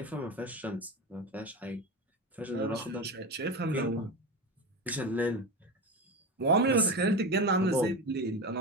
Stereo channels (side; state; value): both; normal; correlation 0.22